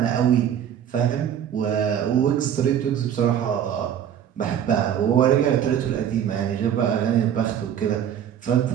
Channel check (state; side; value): quieter; left; 9.4 dB